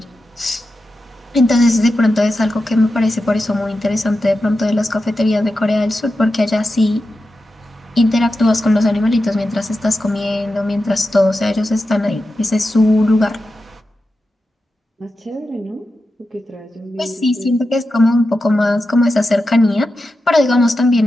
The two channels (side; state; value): both; normal; correlation 0.90